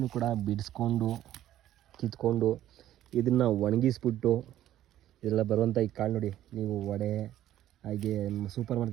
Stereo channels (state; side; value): quieter; left; 12.8 dB